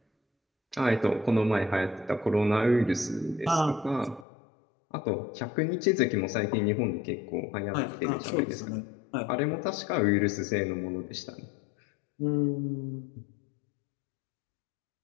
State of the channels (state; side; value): drops out; right; at 4.2 s